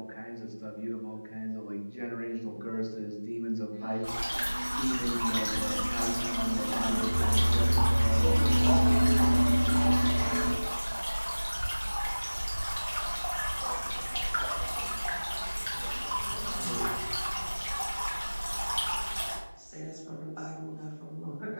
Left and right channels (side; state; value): both; inverted; correlation -1.00